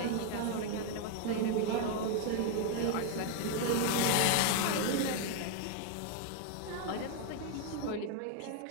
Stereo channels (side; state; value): both; different; correlation 0.00